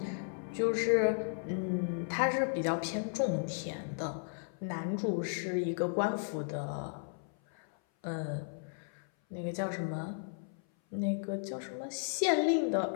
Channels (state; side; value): silent; right; 55 dB below the other